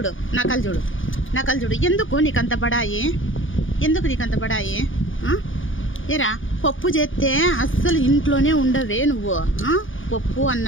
నకలు చూడు, నకలు చూడు. ఎందుకు నీకు అంత బడాయి? ఎందుకు నీకు అంత బడాయి? ఏరా పప్పు చేస్తే అస్సలు ఇంట్లోనే ఉండవే నువ్వు. పప్పు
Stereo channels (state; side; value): late; right; 0.57 ms